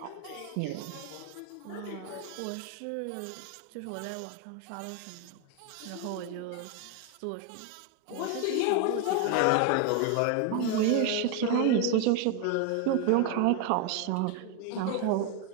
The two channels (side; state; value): both; different; correlation 0.01